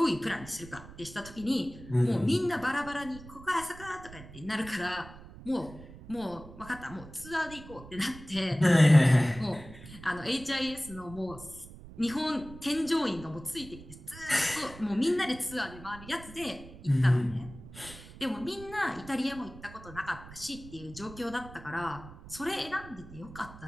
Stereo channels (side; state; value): right; noise; rumble, 16 dB below the sound